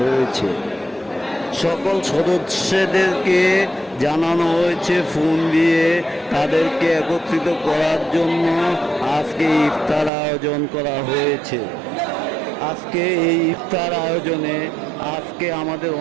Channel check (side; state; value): left; drops out; at 10.1 s